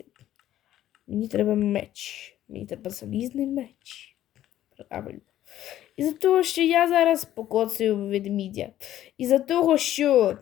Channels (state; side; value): quieter; right; 12.6 dB